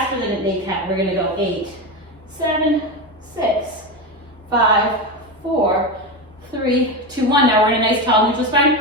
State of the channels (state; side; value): normal; both; correlation 0.18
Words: than an 8 count, we're going to go 8, 7, 6, 5, 4, 3, 2, 1. Now we're in a nice tall neutral spine.